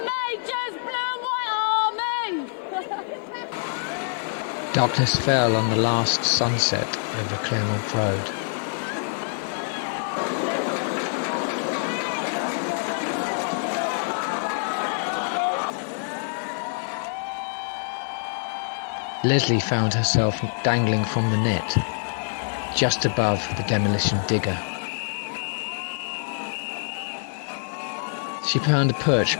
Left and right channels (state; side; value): silent; right; digital silence